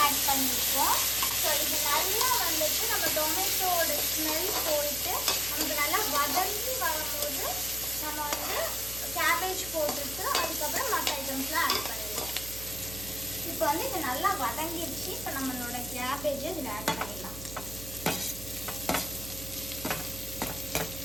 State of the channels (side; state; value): right; noise; hum, 12 dB below the sound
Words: ஆட் பண்ணியிருக்கோம். ஸோ இது நல்லா வந்துட்டு நம்ம டொமேட்டோட ஸ்மெல் போயிட்டு நமக்கு நல்லா வதங்கி வரும்போது நம்ம வந்து கேபேஜ் போட்டுட்டு அதுக்கப்புறம் மற்ற ஐட்டம்ஸ்லாம் ஆட் பண்ணிடுவோம். இப்போ வந்து இது நல்லா வதங்கிடுச்சு. இப்போ நம்மளோட கேபேஜை இதில் ஆட் பண்ணிடலாம்.